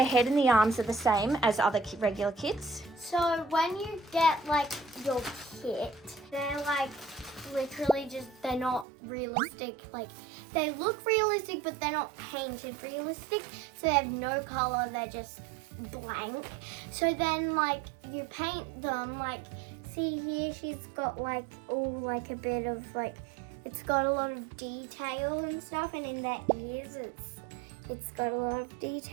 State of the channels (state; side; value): drops out; left; at 8.8 s